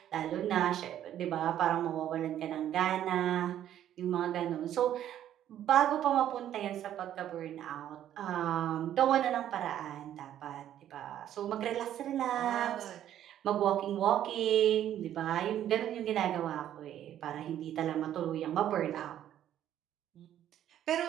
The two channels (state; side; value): quieter; left; 11.2 dB